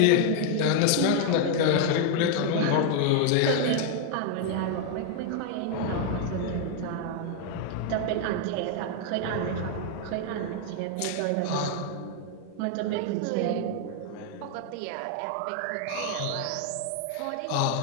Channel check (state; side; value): different; both; correlation 0.00